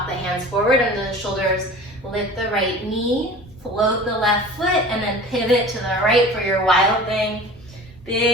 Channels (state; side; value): normal; both; correlation 0.40